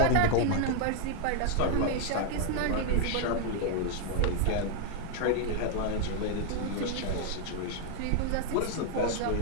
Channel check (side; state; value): both; different; correlation 0.00